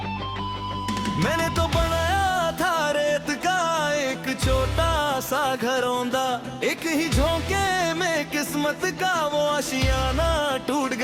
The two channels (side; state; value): both; identical; correlation 1.00